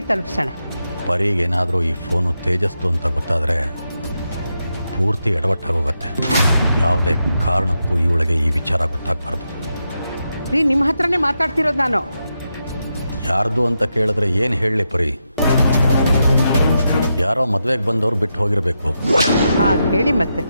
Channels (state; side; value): inverted; both; correlation -0.86